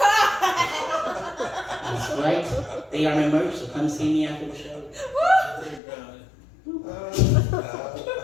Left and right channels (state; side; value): drops out; right; at 5.8 s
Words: That's right. They are my merch, so come see me after the show.